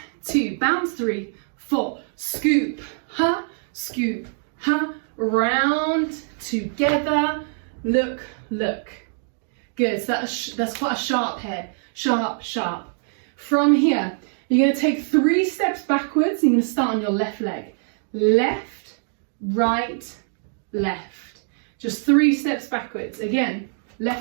2, bounce, 3, 4, scoop, round, together, look. Good, so that's quite a sharp head, sharp. From here, you're going to take 3 steps backwards. You're going to start on your left leg. Left, right, left. Just 3 steps backwards. Again,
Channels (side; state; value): left; silent; 60 dB below the other